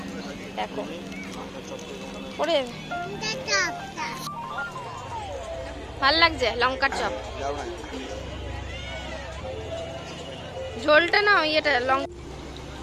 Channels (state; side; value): identical; both; correlation 1.00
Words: দেখো ওরে ভালো লাগছে লঙ্কার চপ। ঝোলটা না ইয়েটা লঙ্কা।